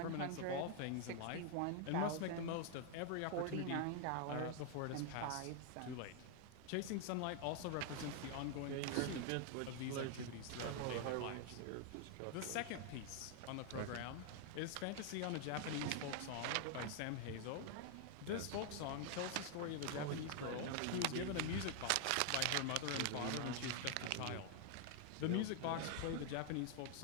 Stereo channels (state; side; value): different; both; correlation 0.00